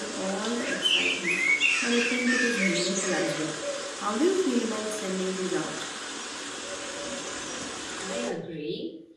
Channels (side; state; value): both; identical; correlation 1.00